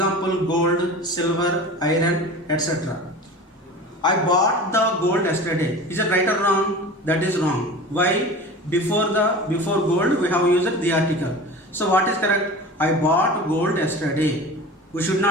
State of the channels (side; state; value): both; normal; correlation 0.35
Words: gold, silver, iron, etc. I bought the gold yesterday. Is it right or wrong? That is wrong. Why? Before gold we have used the article. So what is correct? I bought gold yesterday. We should